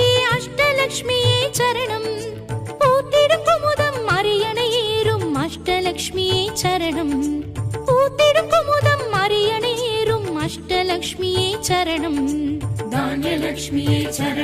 அஷ்டலக்ஷ்மியே சரணம். பூத்திடும் குமுதம் அரியணை ஏறும் அஷ்டலக்ஷ்மியே சரணம். பூத்திடும் குமுதம் அரியணை ஏறும் அஷ்டலக்ஷ்மியே சரணம். தானியலக்ஷ்மியே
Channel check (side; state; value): both; identical; correlation 1.00